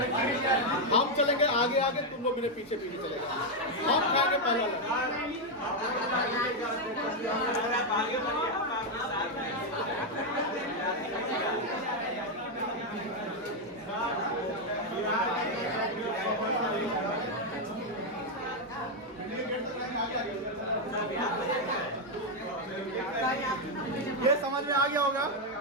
हम चलेंगे आगे आगे, तुम लोग मेरे पीछे पीछे चलेगा। हम खाएंगे पहला। ये समझ में आ गया होगा।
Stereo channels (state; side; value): normal; both; correlation 0.02